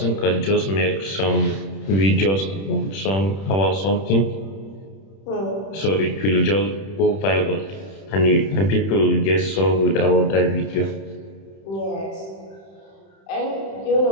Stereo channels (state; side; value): late; right; 31 ms